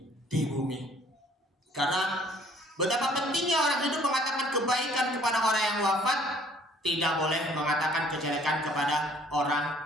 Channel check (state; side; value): normal; both; correlation 0.57